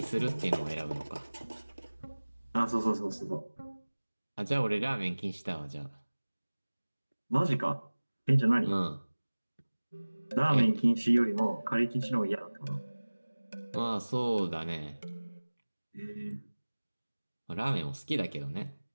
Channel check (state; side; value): inverted; both; correlation -1.00